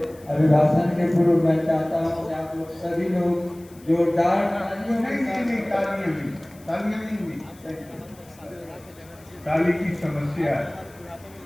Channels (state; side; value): noise; left; hiss, 26 dB below the sound